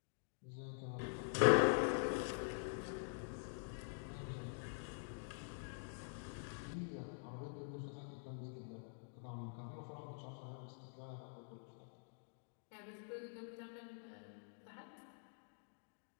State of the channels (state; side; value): silent; right; digital silence